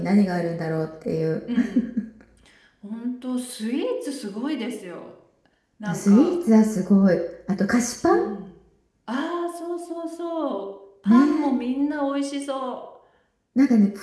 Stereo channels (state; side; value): identical; both; correlation 1.00